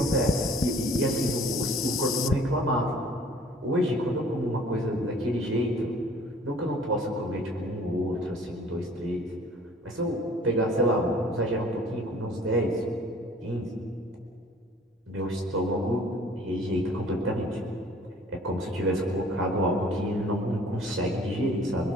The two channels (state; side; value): normal; both; correlation 0.52